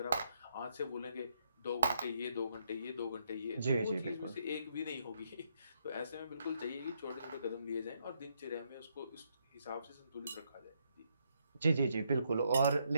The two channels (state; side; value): inverted; both; correlation -0.75